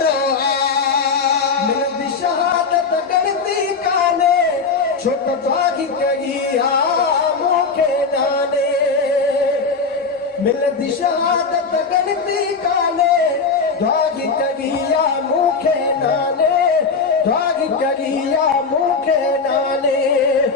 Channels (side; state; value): right; quieter; 4.8 dB